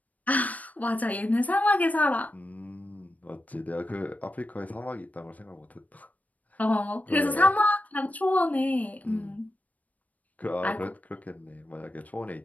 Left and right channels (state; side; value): late; right; 0.073 ms